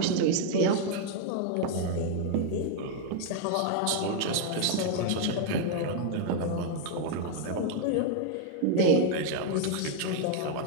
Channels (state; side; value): different; both; correlation 0.00